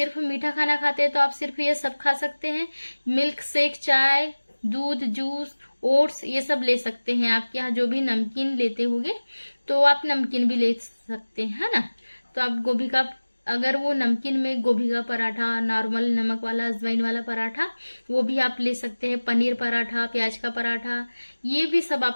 मीठा खाना खाते हैं तो आप सिर्फ ये सब खा सकते हैं, मिल्क शेक, चाय, दूध, जूस, ओट्स, ये सब ले सकते हैं। आपके यहाँ जो भी नमकीन लेते होंगे तो आप नमकीन भी ले सकते हैं, है ना। तो आप गोभी का, अगर वो नमकीन में गोभी का पराठा, नॉर्मल नमक वाला, अजवाइन वाला पराठा, वो भी आप ले सकते हैं। पनीर पराठा, प्याज का पराठा, ये भी सब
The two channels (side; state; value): both; inverted; correlation -1.00